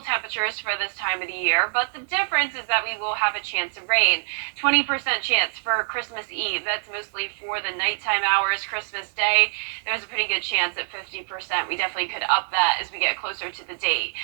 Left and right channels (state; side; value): silent; left; 55 dB below the other